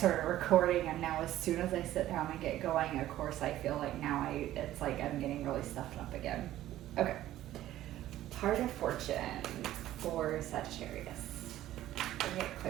recording, and now as soon as I sit down and get going, of course I feel like now it's like I'm getting really stuffed up again. Okay. Heart of Fortune for Sagittarius. Can I get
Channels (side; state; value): left; quieter; 13.9 dB